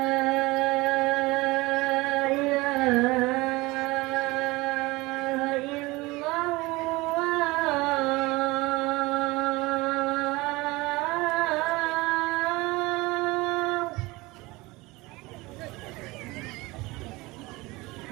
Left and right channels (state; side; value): quieter; left; 22.1 dB